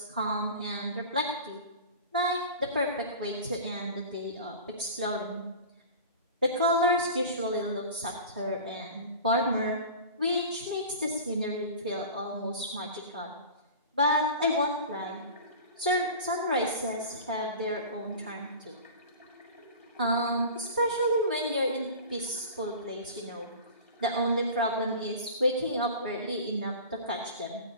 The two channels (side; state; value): both; inverted; correlation -0.36